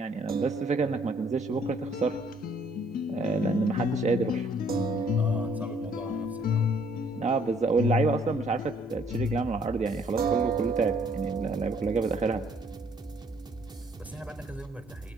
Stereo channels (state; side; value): normal; both; correlation 0.63